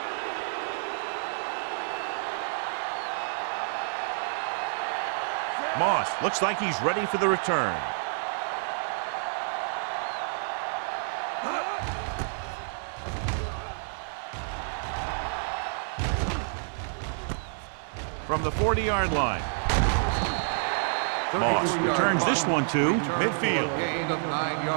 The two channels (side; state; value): left; silent; digital silence